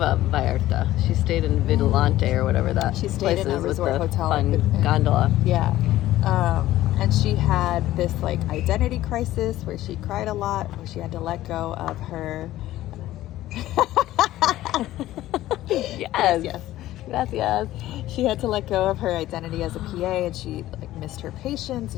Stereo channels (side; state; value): right; quieter; 14.9 dB